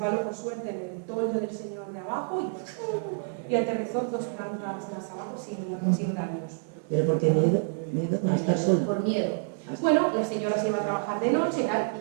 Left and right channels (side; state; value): left; silent; 59 dB below the other